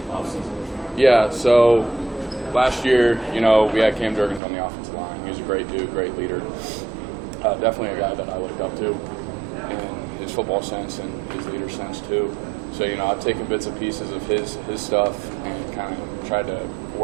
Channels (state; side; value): drops out; left; at 4.4 s